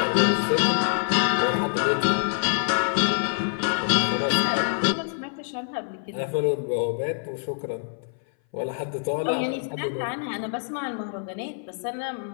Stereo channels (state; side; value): silent; right; 59 dB below the other